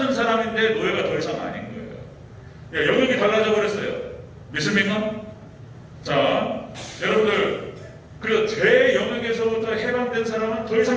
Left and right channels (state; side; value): identical; both; correlation 1.00